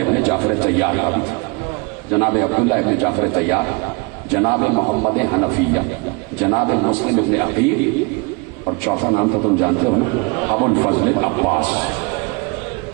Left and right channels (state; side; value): quieter; left; 29.1 dB